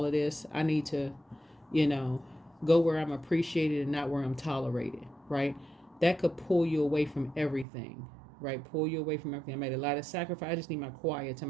of this. I need to, go where I'm appreciated and not where I'm tolerated, right? That could pull you away from everything, right? Pull you away from everything. I made a lot of sacrifice. I just need my quiet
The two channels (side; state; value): left; drops out; at 7.7 s